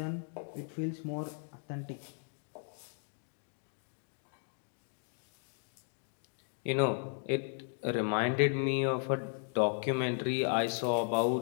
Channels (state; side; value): silent; right; 54 dB below the other